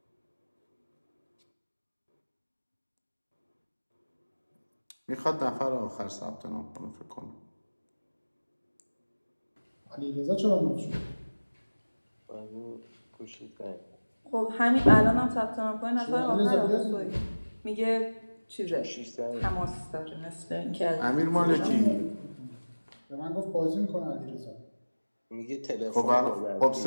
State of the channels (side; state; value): both; inverted; correlation -1.00